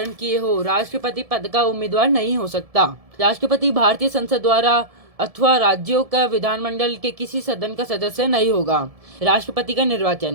किए हो, राष्ट्रपति पद का उम्मीदवार नहीं हो सकता। राष्ट्रपति भारतीय संसद द्वारा अथवा राज्यों का विधानमंडल के किसी सदन का सदस्य नहीं होगा। राष्ट्रपति का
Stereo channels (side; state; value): left; late; 1.7 ms